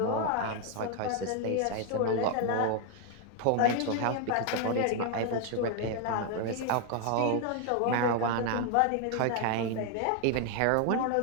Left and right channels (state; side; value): different; both; correlation 0.01